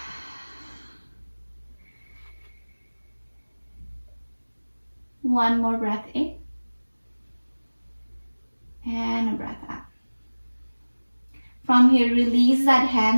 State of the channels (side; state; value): both; inverted; correlation -1.00